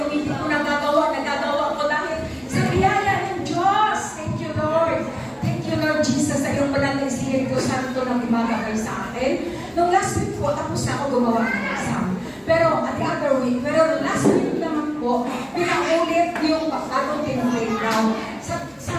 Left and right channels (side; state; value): both; identical; correlation 1.00